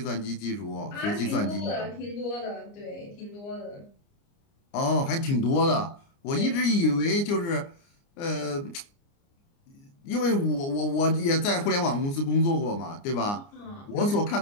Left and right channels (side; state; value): right; late; 29 ms